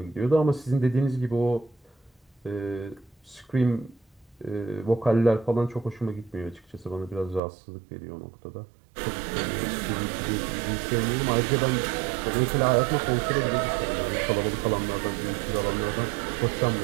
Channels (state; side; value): drops out; left; at 7.4 s